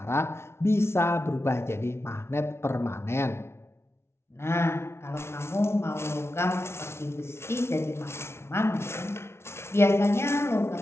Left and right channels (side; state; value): right; late; 0.12 ms